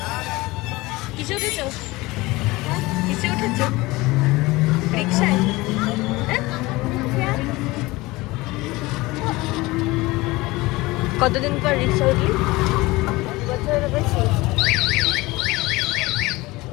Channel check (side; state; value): right; quieter; 21.1 dB